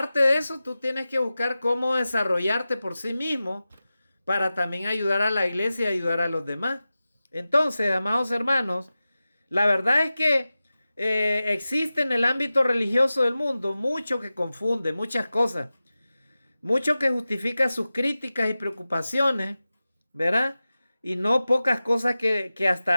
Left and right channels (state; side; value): inverted; both; correlation -0.95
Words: de eso, tú tienes que buscar cómo desarrollarte por sí mismo para también ayudar a la iglesia y ayudar a los demás. Entonces, amados hermanos, la verdad es que existe en el ámbito religioso del mundo mucho que confunde, muchas cosas. Mucho que justifica sus críticas y preocupaciones, ¿verdad? Y no pocas cosas que